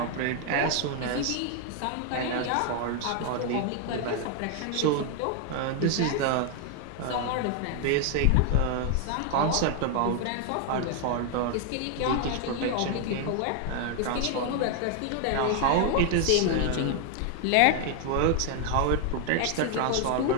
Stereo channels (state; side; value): different; both; correlation 0.00